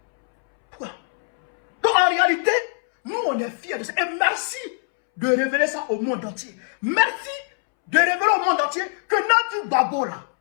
Pourquoi? Donc en réalité, nous on est fiers de ça. Et merci de révéler ça au monde entier. Merci de révéler au monde entier que Nadi Babo là,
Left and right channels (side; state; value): right; silent; 64 dB below the other